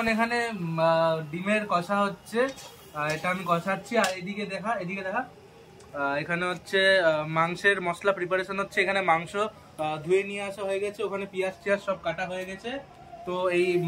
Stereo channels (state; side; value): identical; both; correlation 1.00